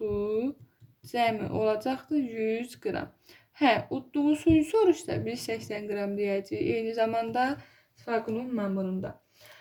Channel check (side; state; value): both; identical; correlation 1.00